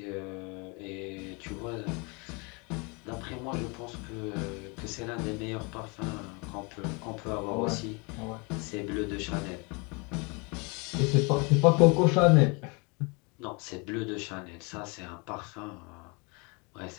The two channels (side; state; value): right; quieter; 30.2 dB